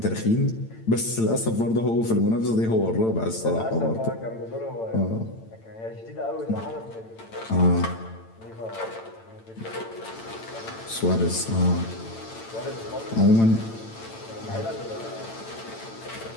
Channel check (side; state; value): right; late; 8.9 ms